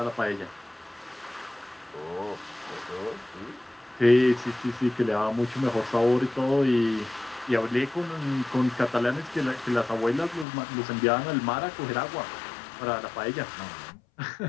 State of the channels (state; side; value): drops out; right; at 10.5 s